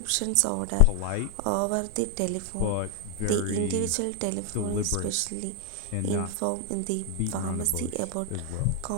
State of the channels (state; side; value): different; both; correlation 0.00